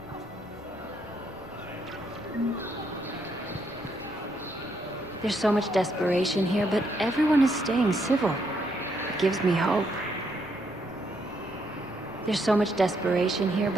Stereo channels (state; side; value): normal; both; correlation 0.75